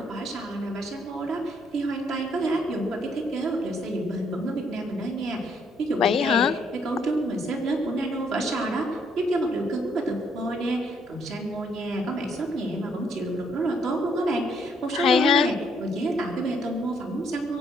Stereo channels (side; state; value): both; normal; correlation 0.69